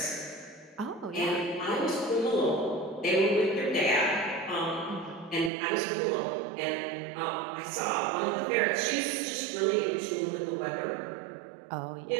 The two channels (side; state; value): left; drops out; at 5.5 s